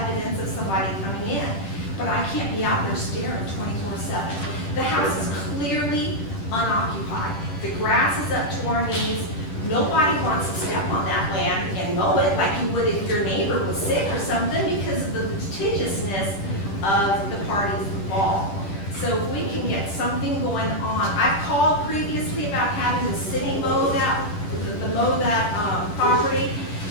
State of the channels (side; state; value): right; late; 10 ms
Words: of somebody coming in. But I can't be out there staring 24/7. The house is clearly unoccupied. The grass is up to our knees. Nobody wants to step on that land and mow it like you would if your neighbor was sick or something because of the litigiousness of the parties involved. So if we can get something going on, I've called previously about having the city mow that, property,